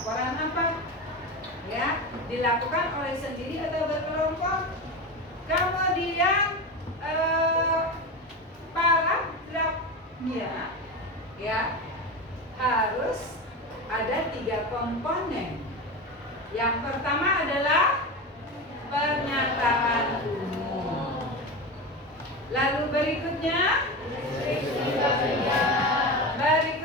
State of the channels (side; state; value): both; normal; correlation 0.22